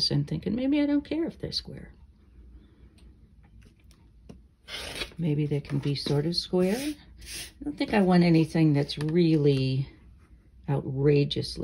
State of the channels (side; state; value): both; identical; correlation 1.00